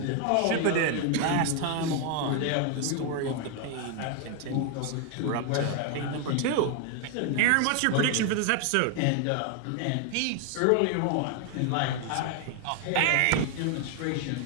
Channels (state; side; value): different; both; correlation 0.01